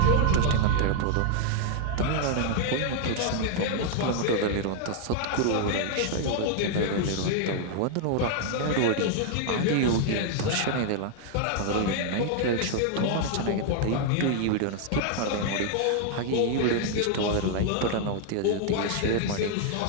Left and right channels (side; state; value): both; different; correlation 0.00